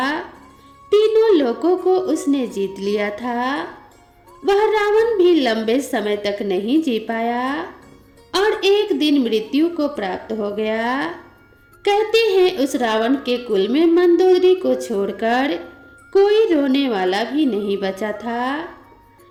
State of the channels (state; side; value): identical; both; correlation 1.00